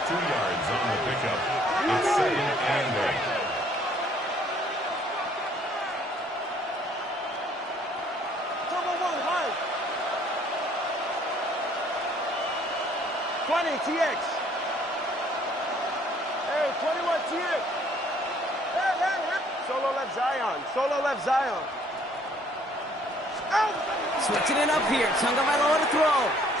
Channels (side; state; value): both; normal; correlation 0.61